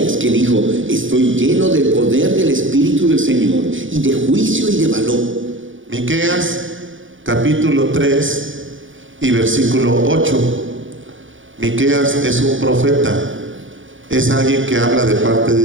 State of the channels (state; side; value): late; left; 0.57 ms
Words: que dijo, estoy lleno del poder del Espíritu del Señor, y de juicio y de valor. Miqueas, capítulo capítulo 3 y versículo 8. Miqueas es un profeta, es alguien que habla de parte